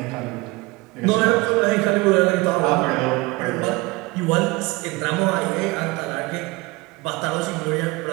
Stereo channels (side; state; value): left; quieter; 23.3 dB